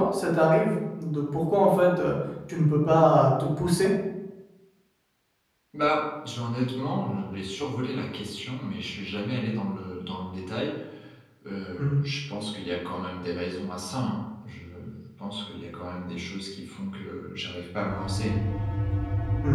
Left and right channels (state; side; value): identical; both; correlation 1.00